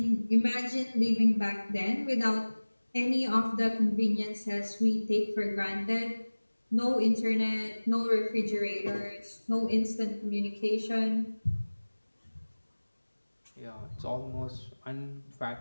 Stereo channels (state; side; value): inverted; both; correlation -1.00